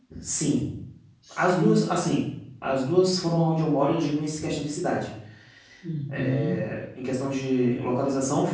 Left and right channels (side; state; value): both; identical; correlation 1.00